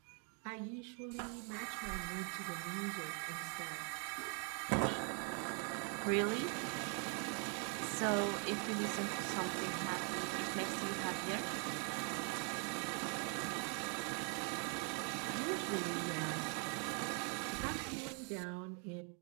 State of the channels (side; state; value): left; quieter; 39.7 dB